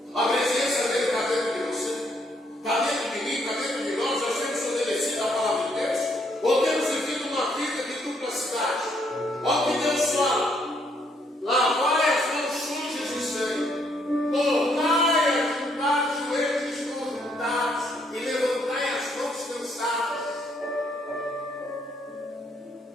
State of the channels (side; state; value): both; normal; correlation 0.71